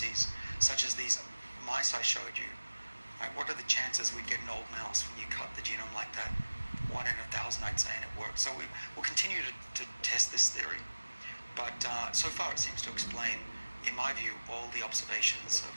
such as these mice I showed you. Right? What are the chances we'd get an old mouse when you cut the genome like that? 1 in 1,000, I'd say, and it works. So we'll continue to test this theory. But so far it seems to explain, in my view, all the observations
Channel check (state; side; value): inverted; both; correlation -1.00